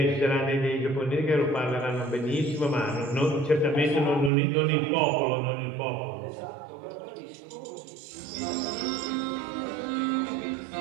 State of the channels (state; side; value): drops out; left; at 4.3 s